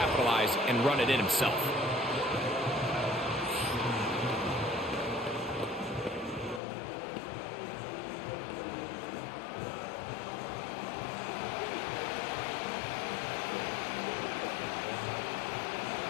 and run it in himself.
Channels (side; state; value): right; drops out; at 6.6 s